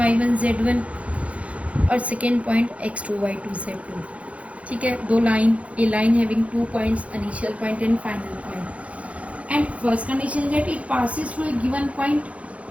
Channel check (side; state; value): left; late; 0.064 ms